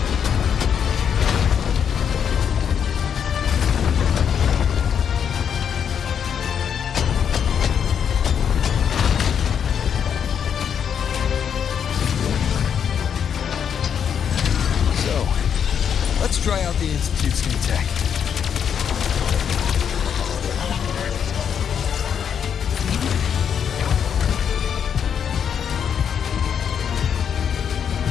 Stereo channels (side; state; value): right; quieter; 7.9 dB